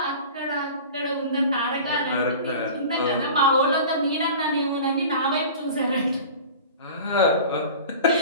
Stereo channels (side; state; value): both; inverted; correlation -0.38